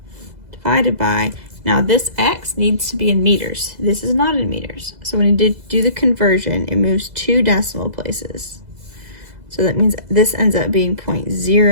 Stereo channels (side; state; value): left; late; 2.0 ms